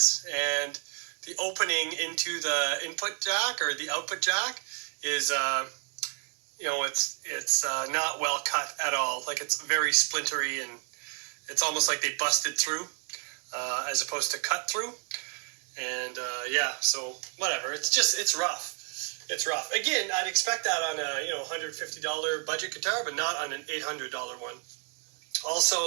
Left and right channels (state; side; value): quieter; left; 38.0 dB